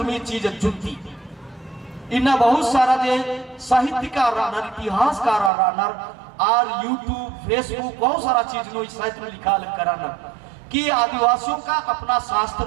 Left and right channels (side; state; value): left; drops out; at 5.5 s